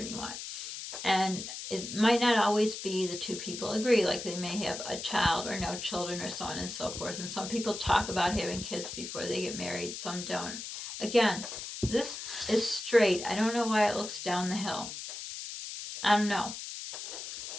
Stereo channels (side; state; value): left; noise; hiss, 8 dB below the sound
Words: you want. And it might not always be the two people agree. Like they may have a child or no children or so on and so forth. And some people talk about having kids before they get married. Some don't. Again, this is straight. I don't know why it looks down the hill. I don't know.